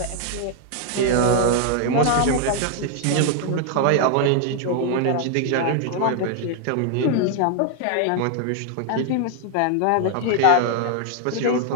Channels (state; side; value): different; both; correlation 0.00